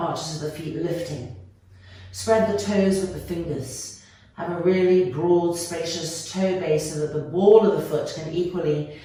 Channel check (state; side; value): identical; both; correlation 1.00